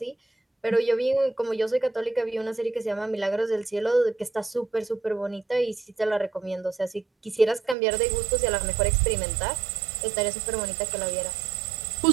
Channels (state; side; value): drops out; left; at 7.8 s